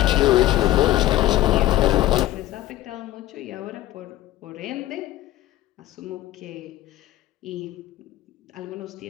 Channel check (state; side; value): quieter; right; 15.4 dB